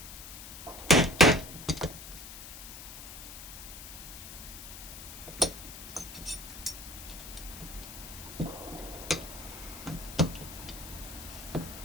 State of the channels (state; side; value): noise; left; hiss, 12 dB below the sound